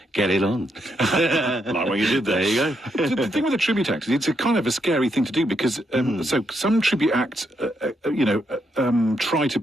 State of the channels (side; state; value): both; normal; correlation 0.79